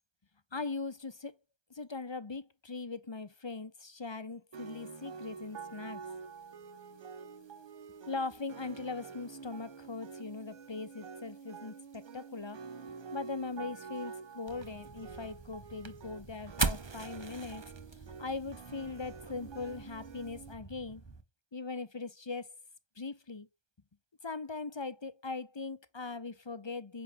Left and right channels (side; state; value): right; late; 1.2 ms